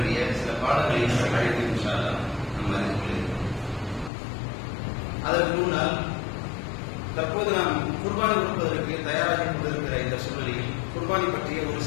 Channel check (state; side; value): drops out; right; at 4.1 s